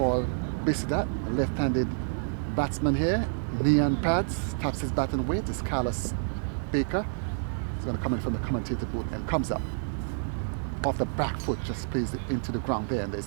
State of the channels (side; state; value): left; silent; digital silence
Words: Bishudat, a left-handed batsman here. Knee and pads, taps his batting weight. Is Carlos Baker. He's going to come in from the commentator booth and comes up. Off the back foot, just plays it into the ground there, and